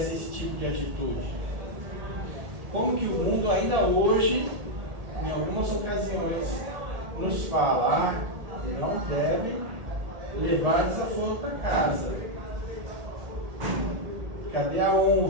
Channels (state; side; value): late; left; 1.8 ms